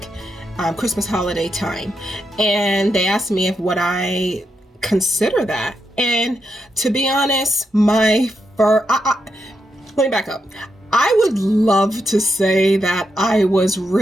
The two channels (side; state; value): both; normal; correlation 0.84